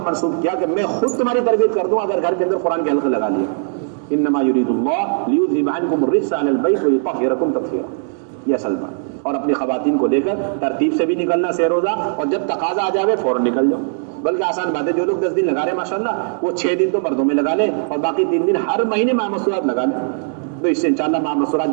منسوخ کیا کہ میں خود تمہاری تربیت کر دوں اگر گھر کے اندر قرآن کے حلقے لگا لیے۔ انما یرید اللہ لیذھب عنکم الرجس اہل البیت ویطہرکم تطہیرا، یہ اصل بات۔ اور اپنی خواتین کو لے کر ترتیب سے بھی نکلنا سہ روزہ، اور جب تقاضا آ جاوے فوراً نکل جاؤ، بلکہ آسان بات ہے، جو لوگ 10 دن لگا رہے ہیں ماشاءاللہ وہ 6 دن تو مردوں میں لگا لیں اور باقی 3 دن ہر مہینے ماہ مسورات لگا لیں، تو اس سے انشاءاللہ ماہ مسورات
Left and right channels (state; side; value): silent; left; 67 dB below the other